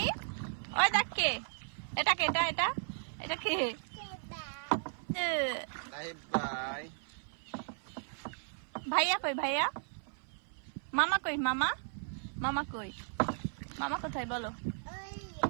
ওই দেখ কে, এটা কে? এটা এটা কে? বাই। ভাইয়া কই? ভাইয়া মামা কই? মামা মামা কই? মামা কোথায় বলো?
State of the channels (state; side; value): silent; left; 54 dB below the other